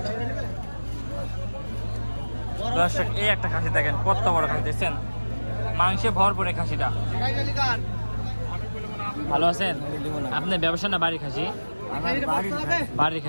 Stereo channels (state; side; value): inverted; both; correlation -1.00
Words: দর্শক এই একটা খাসি দেখেন কত বড় খাসি দেখছেন, মাংসে ভরপুরে খাসিটা। ভালো আছেন? আপনি ব্যবসা না বাড়ি খাসি? বাড়ির